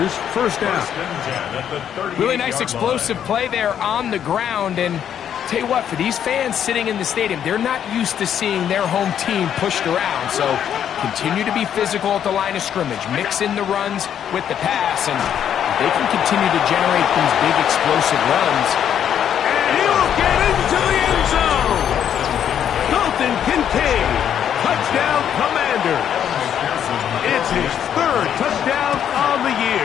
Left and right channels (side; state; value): right; quieter; 9.3 dB